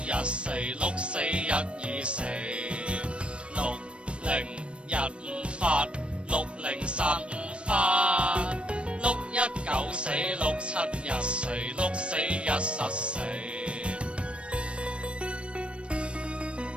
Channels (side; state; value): left; late; 0.059 ms